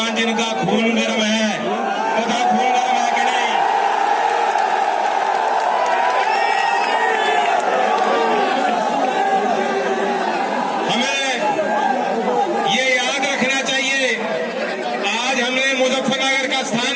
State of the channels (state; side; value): identical; both; correlation 1.00